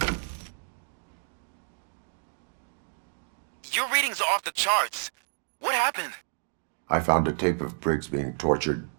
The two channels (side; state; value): left; silent; digital silence